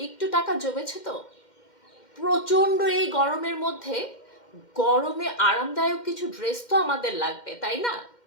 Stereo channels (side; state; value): right; late; 2.1 ms